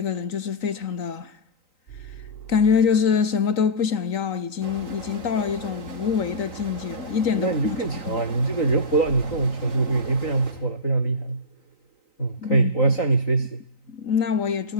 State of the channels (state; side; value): late; right; 3.9 ms